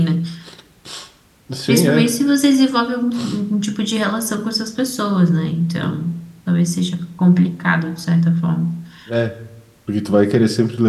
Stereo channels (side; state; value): both; identical; correlation 1.00